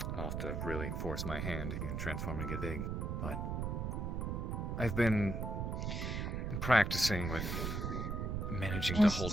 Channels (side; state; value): right; noise; rumble, 2 dB below the sound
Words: I'll have to really force my hand and transform and get big, but I've been practicing with managing Just to hold